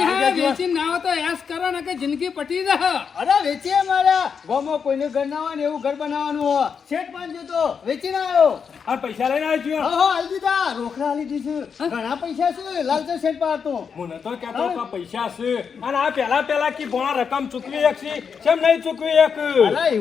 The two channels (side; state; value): right; quieter; 6.4 dB